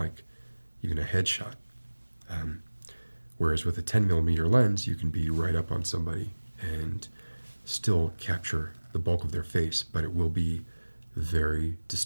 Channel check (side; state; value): both; inverted; correlation -1.00